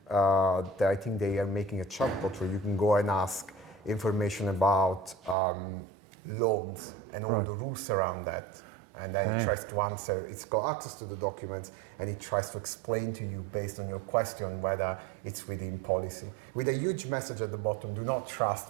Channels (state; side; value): drops out; left; at 5.4 s